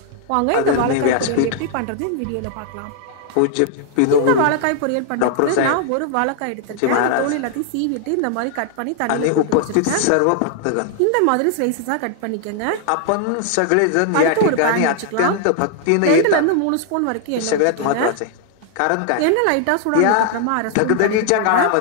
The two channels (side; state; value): both; different; correlation 0.00